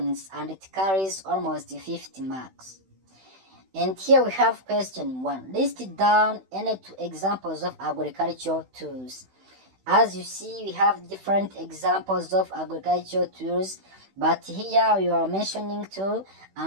and it carries almost 50 marks. And here we have question 1. List down any 2 examples of agricultural tools. As you see, we have different examples of agricultural tools, but here we are mentioning 2,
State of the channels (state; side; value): late; left; 16 ms